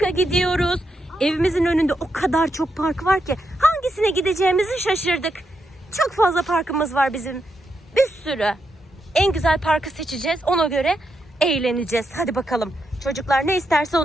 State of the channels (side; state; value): both; normal; correlation 0.83